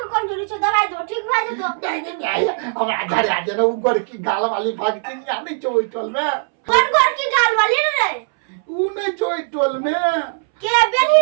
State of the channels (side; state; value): left; silent; 64 dB below the other